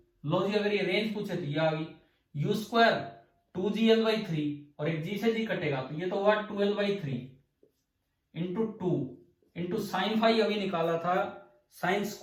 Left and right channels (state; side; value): identical; both; correlation 1.00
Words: लो जी, अगर ये रेंज पूछे तो ये आ गई u², 2gl/3 और एक g से g कटेगा तो ये तो हुआ 2l/3 into 2 into sine phi अभी निकाला था, साइन